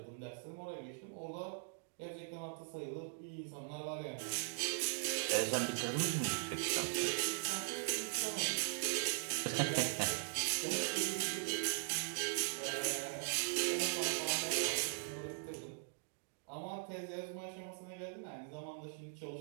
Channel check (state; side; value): silent; left; digital silence